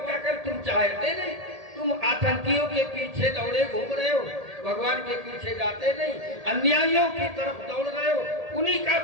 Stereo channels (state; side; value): late; left; 1.8 ms